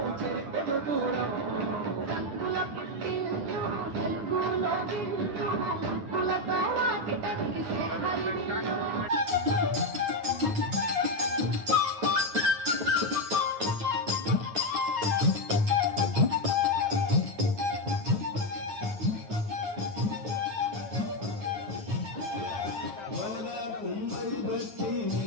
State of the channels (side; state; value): left; late; 9.7 ms